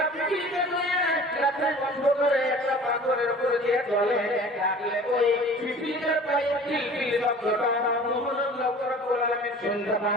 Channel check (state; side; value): normal; both; correlation 0.44